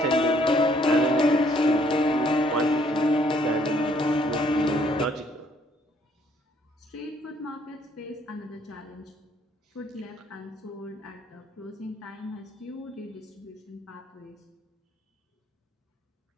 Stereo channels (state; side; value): normal; both; correlation 0.65